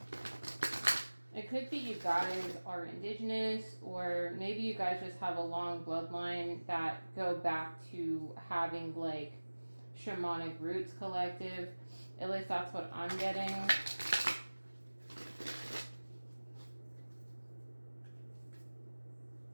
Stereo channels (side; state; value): both; inverted; correlation -1.00